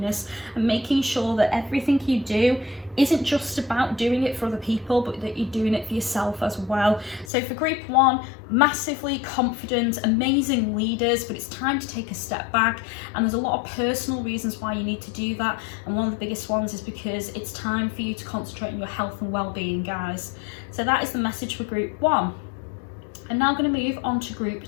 and making sure that everything you do isn't just about doing it for other people, but that you're doing it for yourself as well. So for group 1, massively confident, amazing leaders, but it's time to take a step back, and there's a lot of personal reasons why you need to do that, and one of the biggest ones is because it's time for you to concentrate on your health and well-being, guys. So that is the message for group 1. I'm now going to move on to group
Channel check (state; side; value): drops out; right; at 7.3 s